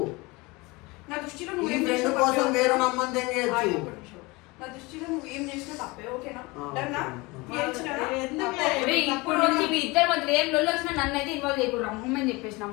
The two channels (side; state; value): right; quieter; 24.3 dB